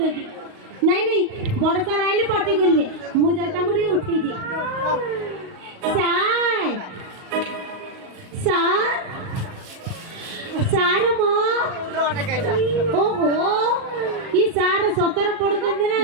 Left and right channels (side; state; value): left; late; 38 ms